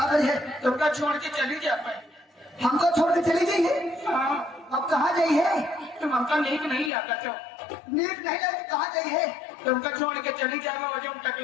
करिए, तुमका छोड़ के चली जा पाए। हमको छोड़ के चली जाइए। अब कहाँ जाइए? तुम हमका नीक नहीं लागा तो नीट नहीं लगे, कहाँ जाइए? तुमका छोड़ के चली जाएगा, वजह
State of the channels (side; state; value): right; drops out; at 6.9 s